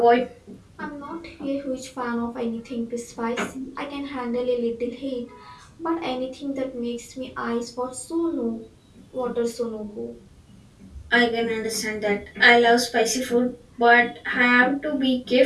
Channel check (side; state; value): both; identical; correlation 1.00